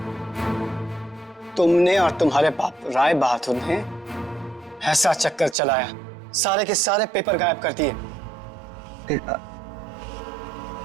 तुमने और तुम्हारे बाप राय बहादुर ने ऐसा चक्कर चलाया, सारे के सारे पेपर गायब कर दिए।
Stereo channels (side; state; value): left; drops out; at 5.6 s